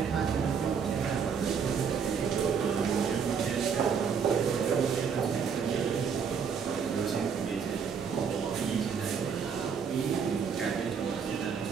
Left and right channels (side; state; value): left; quieter; 6.6 dB